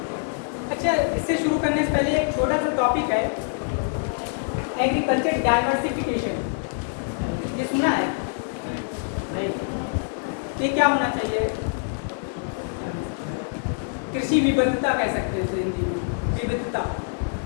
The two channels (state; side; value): silent; right; digital silence